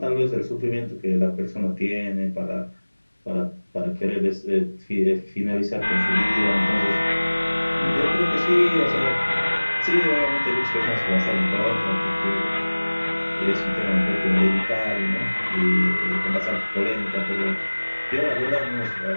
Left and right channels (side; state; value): both; inverted; correlation -1.00